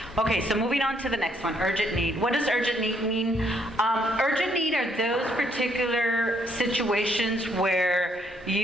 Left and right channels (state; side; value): normal; both; correlation 0.70